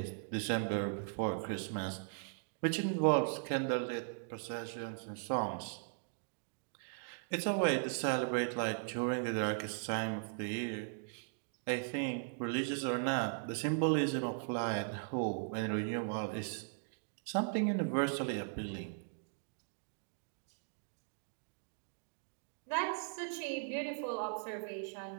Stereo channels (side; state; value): left; silent; digital silence